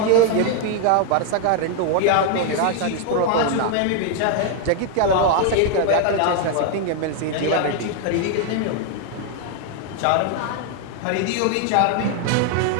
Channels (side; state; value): both; different; correlation 0.00